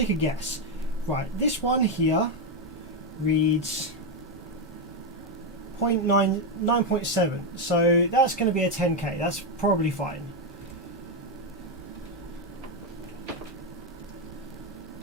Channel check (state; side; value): normal; both; correlation 0.05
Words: a guess. Right, this one here reads 9.7, so that's going to be a 10k. That's probably fine.